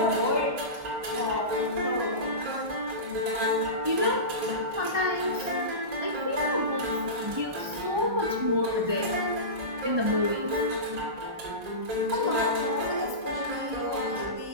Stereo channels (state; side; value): late; left; 1.2 ms